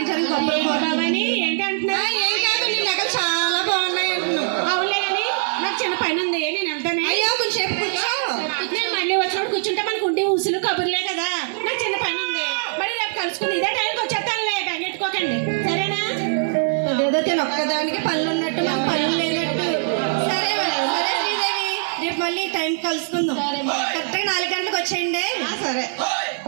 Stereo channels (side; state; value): left; silent; 60 dB below the other